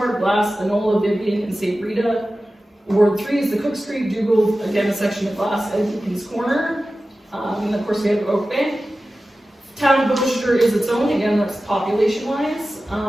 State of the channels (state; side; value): normal; both; correlation 0.95